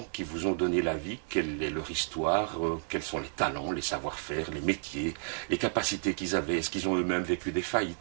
qui vous ont donné la vie, quelle est leur histoire, quels sont les talents, les savoir-faire, les métiers, les capacités qu'ils avaient, est-ce qu'ils ont eux-mêmes vécu des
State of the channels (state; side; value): silent; left; digital silence